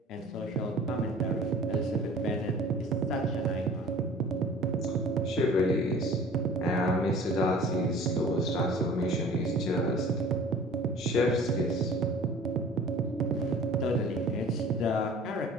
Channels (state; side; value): normal; both; correlation 0.45